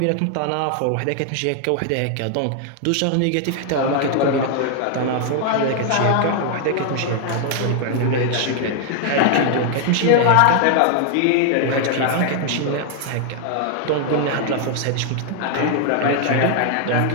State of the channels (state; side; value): different; both; correlation 0.00